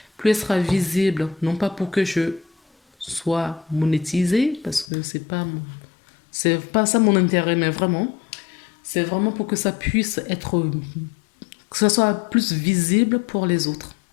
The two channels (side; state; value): right; drops out; at 4.9 s